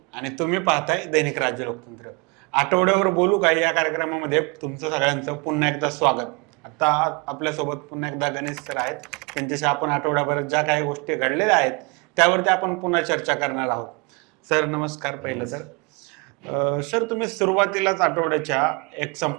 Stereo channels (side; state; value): left; quieter; 29.8 dB